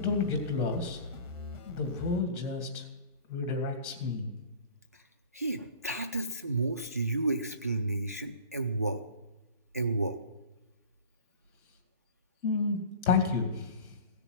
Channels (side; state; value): both; inverted; correlation -0.41